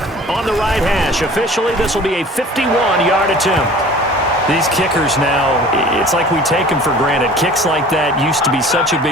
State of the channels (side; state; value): both; normal; correlation 0.45